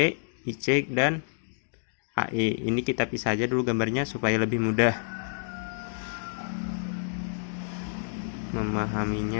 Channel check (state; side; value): silent; right; digital silence